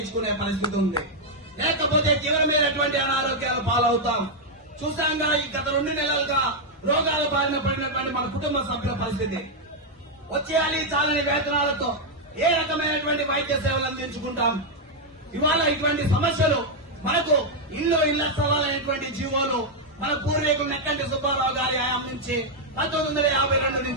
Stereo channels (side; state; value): both; normal; correlation -0.01